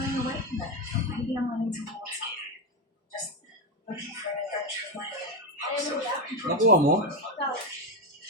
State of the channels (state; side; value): normal; both; correlation 0.09